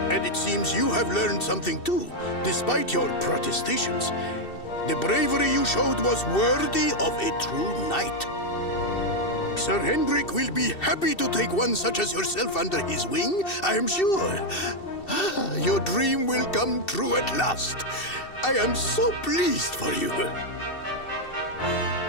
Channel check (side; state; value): right; late; 2.7 ms